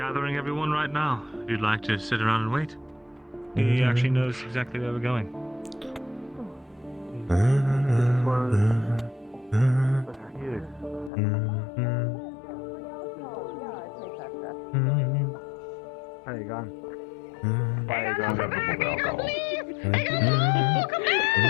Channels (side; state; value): right; drops out; at 11.1 s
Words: everyone right now. If you'd like to sit around and wait. He actually knows exactly where we're going. How you going?